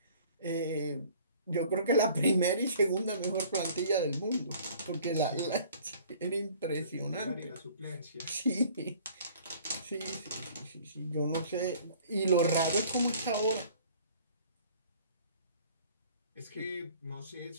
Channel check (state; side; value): inverted; both; correlation -0.52